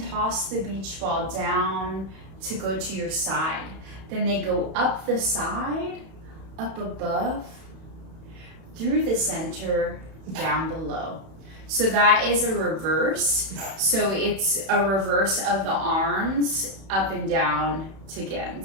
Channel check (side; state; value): left; late; 31 ms